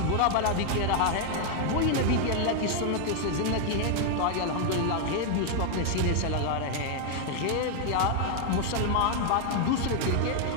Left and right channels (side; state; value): both; different; correlation 0.00